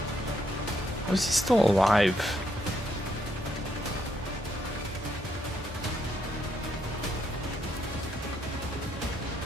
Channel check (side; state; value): both; normal; correlation 0.75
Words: How is he still alive?